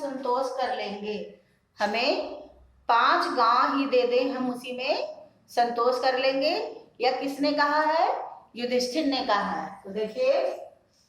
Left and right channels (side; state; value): both; identical; correlation 1.00